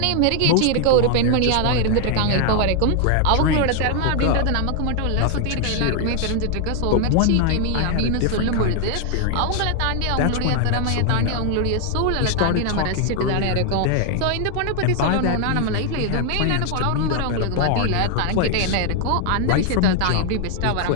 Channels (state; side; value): different; both; correlation 0.00